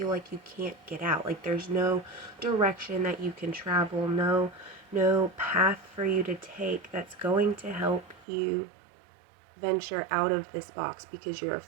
like you can't get out. Like there's no direction that you can travel, no path for you to take that's going to help you venture out of this box, because you're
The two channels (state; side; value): drops out; left; at 8.2 s